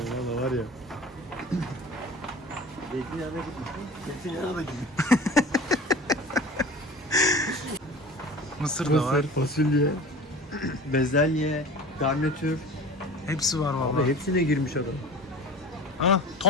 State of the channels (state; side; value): normal; both; correlation 0.38